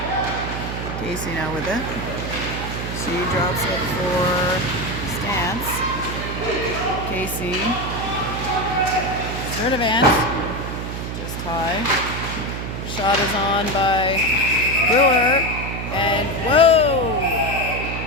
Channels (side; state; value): right; noise; hum, 5 dB below the sound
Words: Casey now with it. She drops it for Stance. Casey. Sturdivant. Just high. Shot is on by Brewer. And whoa!